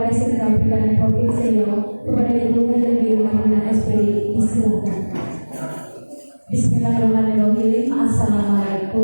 SMK Perikanan Provinsi Riau kepada Ibu Haji Marina SPD. Disilakan. Bismillahirrahmanirrahim.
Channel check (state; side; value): inverted; both; correlation -1.00